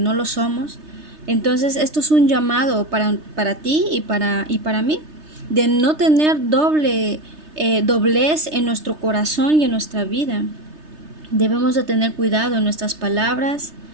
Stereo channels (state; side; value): late; left; 3.3 ms